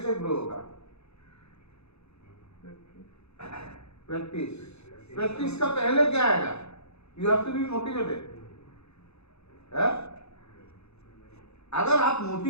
ग्रो होगा? प्रैक्टिस। प्रैक्टिस का पहले क्या आएगा? You have to be motivated. अगर आप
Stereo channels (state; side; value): late; right; 0.80 ms